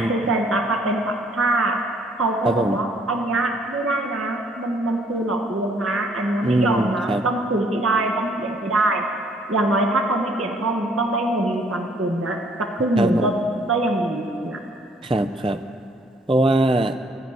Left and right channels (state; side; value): normal; both; correlation 0.63